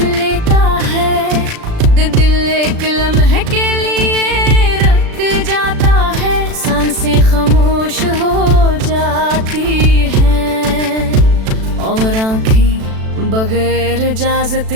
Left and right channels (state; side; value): late; left; 36 ms